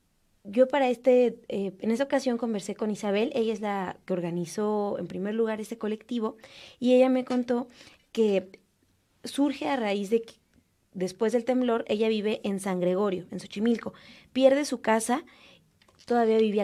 Yo en esta ocasión conversé con Isabel, ella es la que organizó en primer lugar este colectivo, y ella me contó que surge a raíz de que después del temblor ella vive en San Gregorio, en Xochimilco, pierde su casa, todavía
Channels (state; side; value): identical; both; correlation 1.00